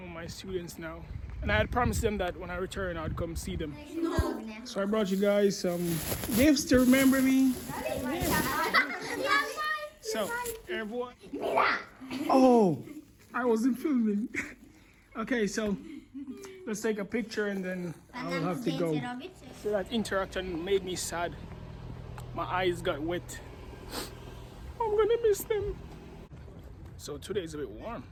of my students now. And I had promised them that when I return, I'd come see them. So I brought you guys some gifts to remember me. So, everyone. Oh, I wasn't filming. Okay, so let's take a picture and then I'll have to go. So that interaction made me sad. My eyes got wet. I'm gonna miss them. So today is a bit warm.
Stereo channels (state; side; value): identical; both; correlation 1.00